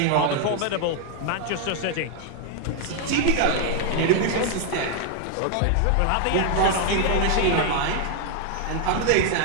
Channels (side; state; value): both; different; correlation 0.00